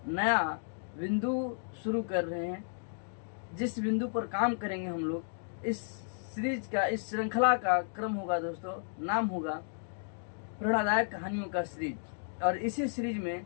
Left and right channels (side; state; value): right; silent; digital silence